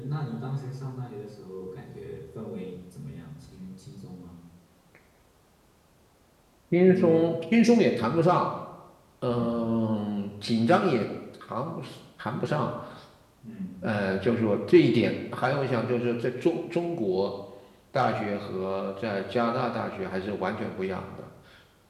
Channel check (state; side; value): identical; both; correlation 1.00